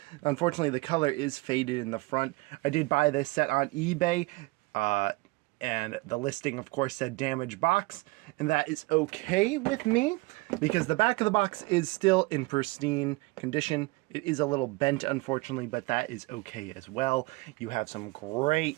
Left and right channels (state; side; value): quieter; left; 23.6 dB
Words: Unfortunately, the color is faded in the front. I did buy this set on eBay. And the listing, of course, said damaged box, and that is okay with me because the back of the box is still in pristine condition. It is a little bent, unfortunately, but that is okay as well. You have some